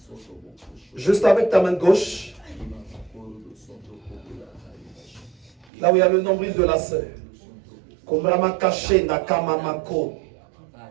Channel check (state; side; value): drops out; left; at 5.7 s